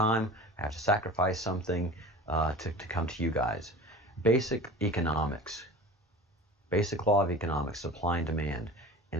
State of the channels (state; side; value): normal; both; correlation 0.37